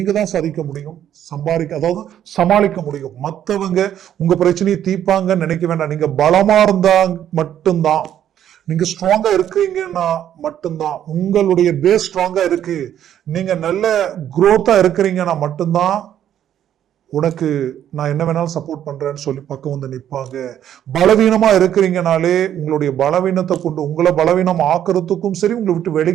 தான் சாதிக்க முடியும், அதாவது சமாளிக்க முடியும். மத்தவங்க உங்க பிரச்சனையை தீர்ப்பாங்கன்னு நினைக்க வேண்டாம். நீங்க பலமா இருந்தா மட்டும்தான், நீங்க ஸ்ட்ராங்கா இருக்கீங்கன்னா மட்டும்தான், உங்களுடைய பேஸ் ஸ்ட்ராங்கா இருக்கு, நீங்க நல்ல குரோத்தா இருக்கிறீங்கன்னா மட்டும்தான் உனக்கு நான் என்ன வேணாலும் சப்போர்ட் பண்றேன்னு சொல்லி பக்கம் நிற்பாங்க. பலவீனமா இருக்கிறீங்கனாலே உங்களுடைய பலவீனத்தை கொண்டு உங்களை பலவீனம் ஆக்குறதுக்கும் சரி, உங்களை விட்டு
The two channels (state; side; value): quieter; left; 10.5 dB